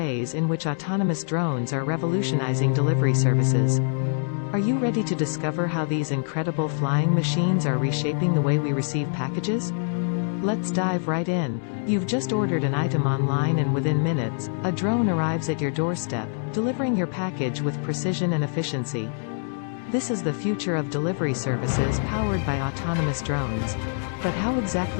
in which autonomous drones are revolutionizing delivery services. Are you ready to discover how these incredible flying machines are reshaping the way we receive packages? Let's dive right in. You've just ordered an item online and within minutes, a drone arrives at your doorstep, delivering your package with precision and efficiency. This is the future of delivery services powered by autonomous drones. But how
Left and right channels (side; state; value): right; silent; 61 dB below the other